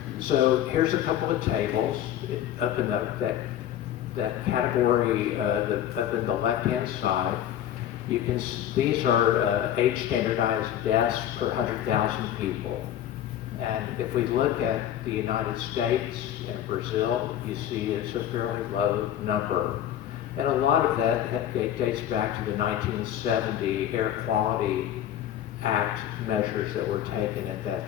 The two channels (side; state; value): right; quieter; 11.3 dB